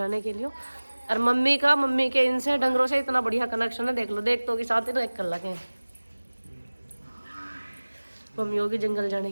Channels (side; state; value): both; inverted; correlation -1.00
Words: के लिए। और मम्मी के इनसे डंगरों से इतना बढ़िया कनेक्शन है, देख लो, देख तो के साथ ही तो एक कर लगे। मम्मी होगी जंगल जाने